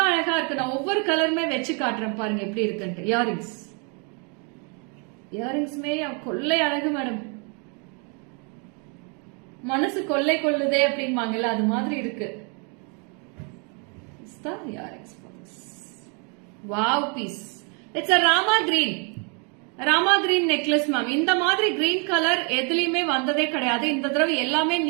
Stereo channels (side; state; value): left; quieter; 36.2 dB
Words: அழகா இருக்கு. நான் ஒவ்வொரு கலருமே வச்சு காட்டுறேன் பாருங்க எப்படி இருக்குன்ட்டு. இயரிங்ஸ்மே கொள்ளை அழகு மேடம். மனசு கொள்ளை கொள்ளுதே அப்படிம்பாங்கல்ல அது மாதிரி இருக்கு. Earrings wow piece. It's a Rama green. Rama green necklace ma'am. இந்த மாதிரி கிரீன் கலர் எதுலயுமே வந்ததே கிடையாது. இந்த தடவை எல்லாமே